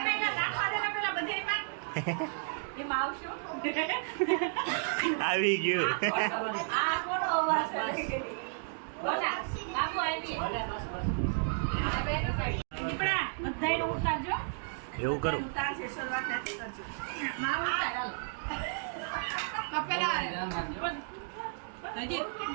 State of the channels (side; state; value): left; silent; digital silence